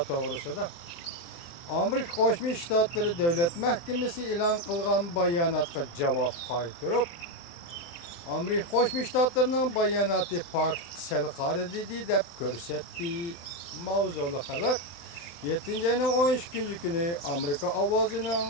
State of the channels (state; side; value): late; right; 23 ms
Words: toğrusida. Amerika Qo'shma Shtatlari Davlat Mahkamasi e'lon qilgan bayonotga javob qaytirib, Amerika Qo'shma Shtatlarining bayonoti fakt sal qaridi deb ko'rsatdi. Mavzuli xabar 7 ayning 13 kuni Amerika ovozining